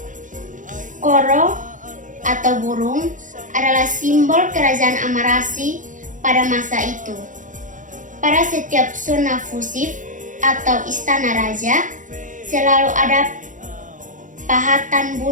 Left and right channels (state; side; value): late; left; 0.37 ms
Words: koro atau burung adalah simbol kerajaan Amarasi pada masa itu. Pada setiap zona fusif atau istana raja selalu ada pahatan